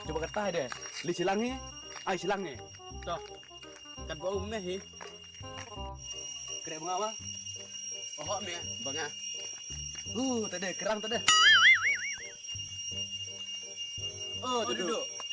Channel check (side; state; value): both; identical; correlation 1.00